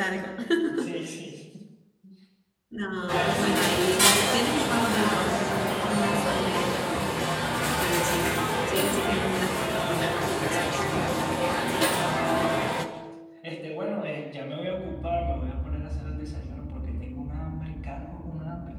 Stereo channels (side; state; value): both; identical; correlation 1.00